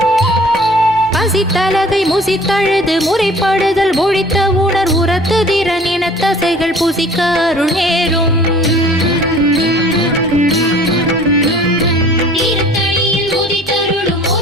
பசித்தலகை முசித்தழுது முறைப்படுதல் ஒழித்த உணர் உரத்து திறன் என தசைகள் புசிக்க அருள் நேரும். தீர்த்தடியில் உதித்தருளும்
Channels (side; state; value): both; normal; correlation 0.49